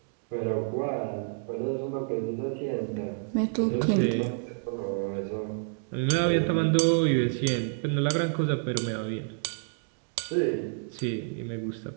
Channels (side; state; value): left; silent; digital silence